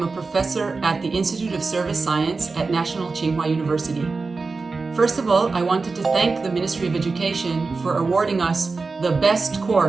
a professor at the Institute of Service Science at National Tsinghua University. First of all, I wanted to thank the Ministry of Education for awarding us the best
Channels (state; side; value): quieter; left; 4.1 dB